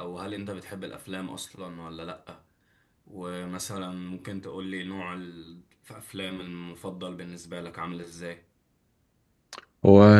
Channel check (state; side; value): identical; both; correlation 1.00